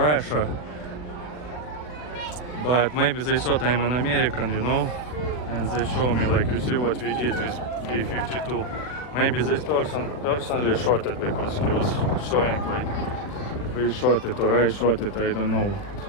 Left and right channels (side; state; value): right; late; 40 ms